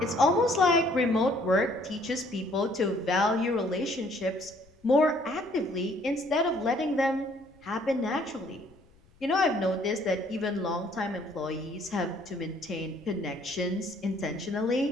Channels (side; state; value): left; noise; rumble, 29 dB below the sound